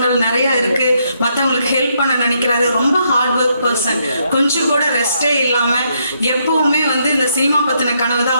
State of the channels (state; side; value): inverted; both; correlation -0.75